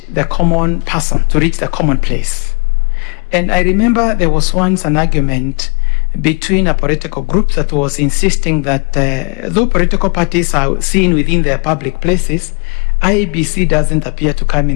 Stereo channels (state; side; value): quieter; right; 33.8 dB